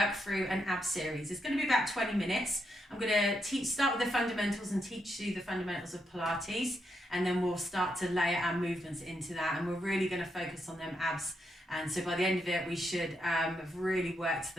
through an ab series. It's going to be about 20 minutes. I'm going to start with the fundamentals and teach you the fundamentals of Pilates, and then we'll start to layer our movements into that, and we're really going to focus on them abs. And so by the end of it we should have really worked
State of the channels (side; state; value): both; normal; correlation 0.81